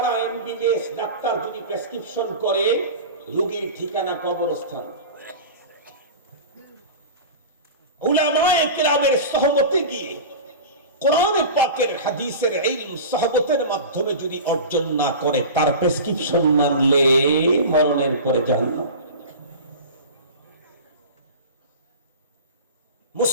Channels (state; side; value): inverted; both; correlation -0.31